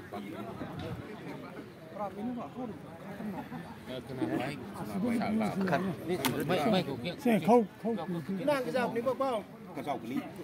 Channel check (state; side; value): identical; both; correlation 1.00